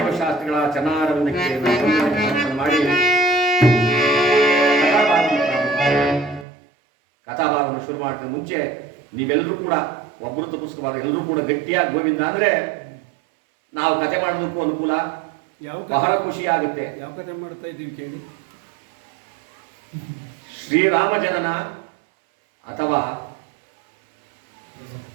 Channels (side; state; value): left; drops out; at 6.5 s